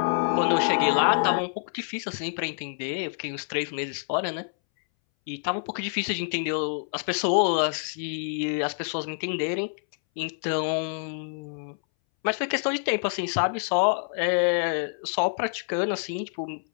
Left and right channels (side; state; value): right; silent; 60 dB below the other